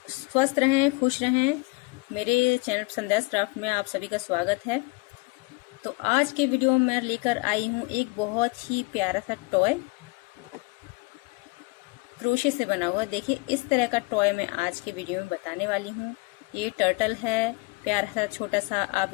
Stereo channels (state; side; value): quieter; right; 26.3 dB